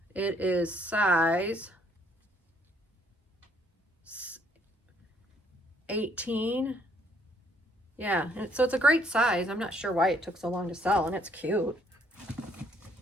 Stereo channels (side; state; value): both; normal; correlation 0.66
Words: It is size 18. Yeah, and so it's a great size. I'm not sure why it took so long to sell, and it's cute.